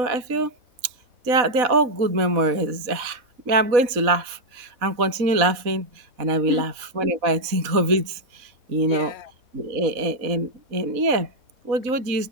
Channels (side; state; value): left; late; 4.0 ms